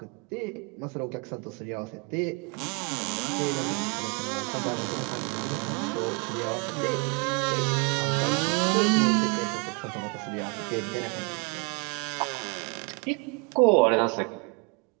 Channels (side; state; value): left; quieter; 31.3 dB